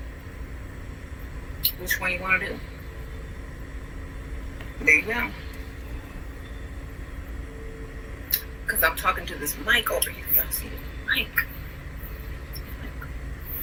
Which one you want to do? There you go. Because I'm talking to this mic over here. Y'all see the mic?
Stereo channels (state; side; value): identical; both; correlation 1.00